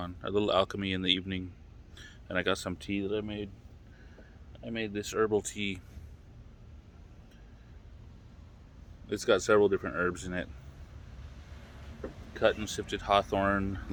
A little alchemy in the evening. And I got some tea that I made. I made this herbal tea. It's got several different herbs in it: cut and sifted hawthorn,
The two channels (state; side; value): identical; both; correlation 1.00